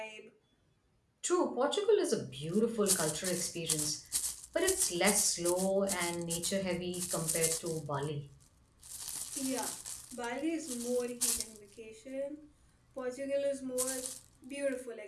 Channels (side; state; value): both; identical; correlation 1.00